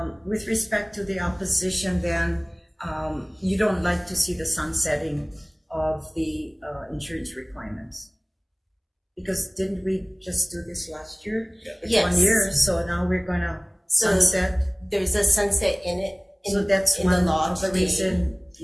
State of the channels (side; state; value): both; identical; correlation 1.00